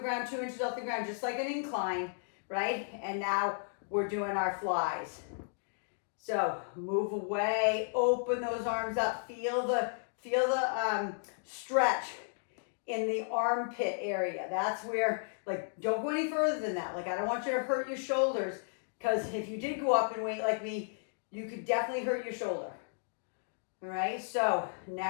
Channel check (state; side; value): silent; right; digital silence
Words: 2 inches off the ground, just like an incline, right? And now we're doing our flies. So move away, open those arms up, feel the stretch in the armpit area. That's where, like, don't go any further than that. Like, I don't want you to hurt your shoulders, because if you did go up in weight like me, you could definitely hurt your shoulder. All right, so